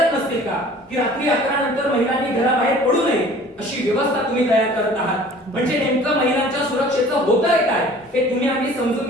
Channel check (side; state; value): both; normal; correlation 0.48